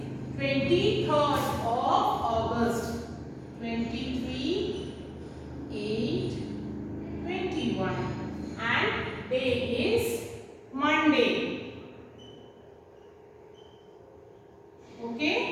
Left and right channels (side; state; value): both; identical; correlation 1.00